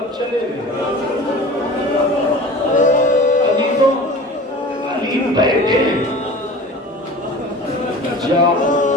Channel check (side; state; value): both; normal; correlation 0.39